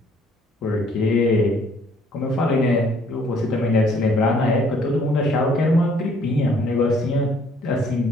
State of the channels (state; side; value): normal; both; correlation 0.61